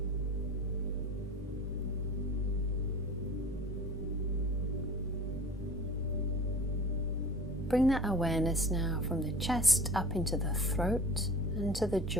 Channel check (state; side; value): normal; both; correlation 0.41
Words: Bring that awareness now from the chest up into the throat and to the